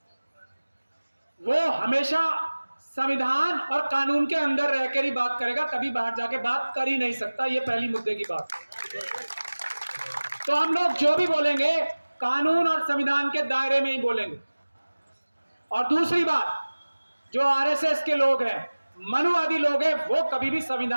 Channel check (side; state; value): both; inverted; correlation -1.00